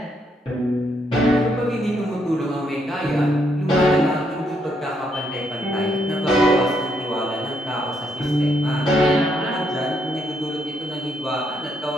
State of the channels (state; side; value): normal; both; correlation 0.74